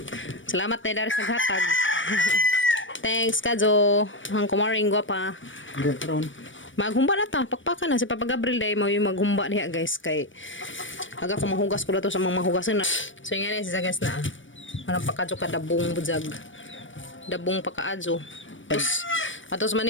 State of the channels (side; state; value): right; late; 0.56 ms